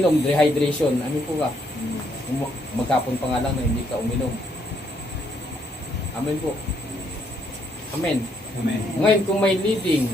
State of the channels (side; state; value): both; normal; correlation 0.72